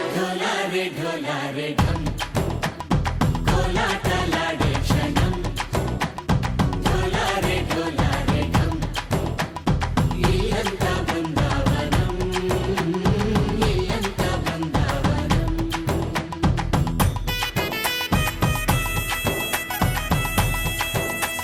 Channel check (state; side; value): identical; both; correlation 1.00